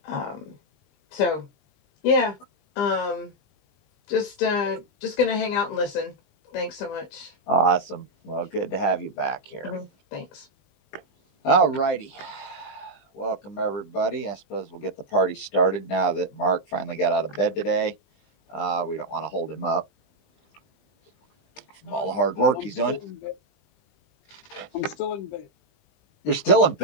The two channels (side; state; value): right; late; 20 ms